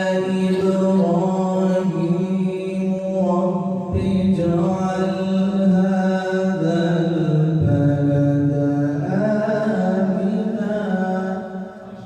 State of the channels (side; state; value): both; identical; correlation 1.00